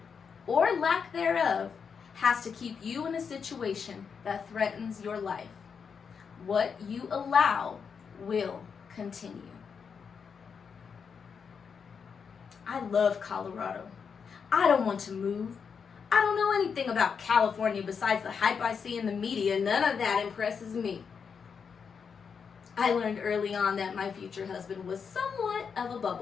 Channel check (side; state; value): right; quieter; 6.3 dB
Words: or lack thereof has to keep you in a situation that threatens your life. What you allow will continue. I love Colorado. I don't want to move. I don't know anything about California besides the hype I see in the media. None of that impresses me. I learned early on that my future husband was somewhat of a